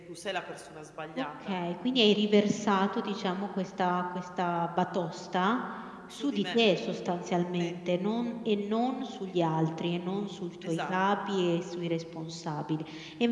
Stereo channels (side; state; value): both; identical; correlation 1.00